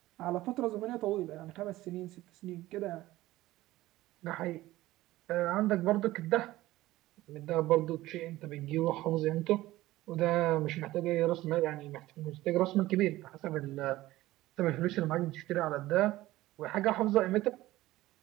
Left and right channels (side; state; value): left; quieter; 16.9 dB